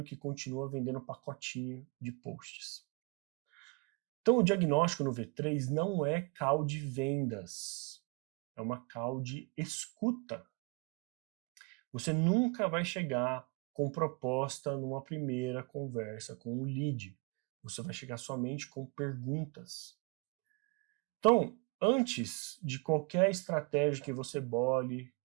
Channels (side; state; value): left; quieter; 27.8 dB